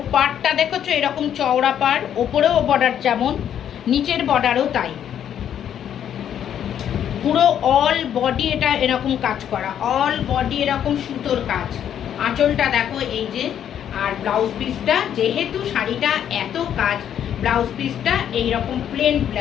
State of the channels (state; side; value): quieter; right; 9.6 dB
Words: পাড়টা দেখেছো, এরকম চওড়া পাড়, ওপরেও বর্ডার যেমন, নিচের বর্ডারও তাই, পুরো অল বডি এটা এরকম কাজ করা, অল বডি এরকম সুতোর কাজ। আঁচলটা দেখো এই যে, আর ব্লাউজ পিসটা, যেহেতু শাড়িটা এত কাজ, ব্লাউজ পিসটা এইরকম প্লেন